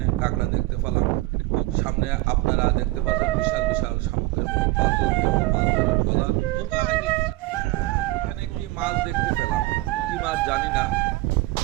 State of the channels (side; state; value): left; quieter; 19.8 dB